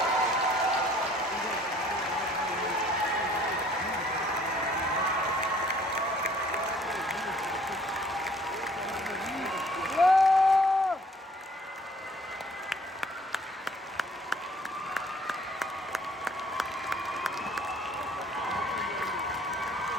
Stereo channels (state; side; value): normal; both; correlation 0.57